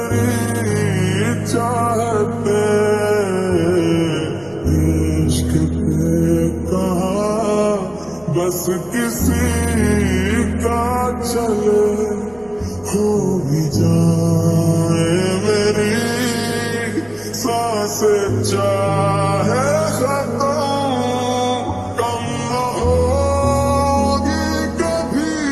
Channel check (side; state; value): left; noise; hum, 27 dB below the sound